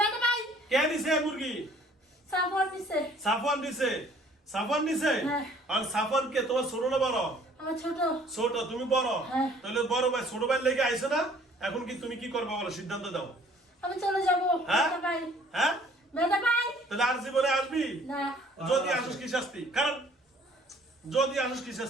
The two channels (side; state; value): both; normal; correlation 0.56